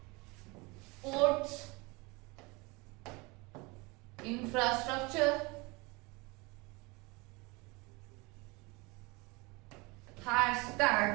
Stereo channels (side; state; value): left; quieter; 26.0 dB